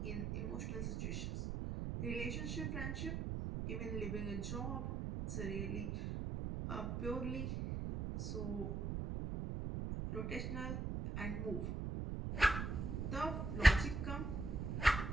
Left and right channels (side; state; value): right; noise; rumble, 2 dB below the sound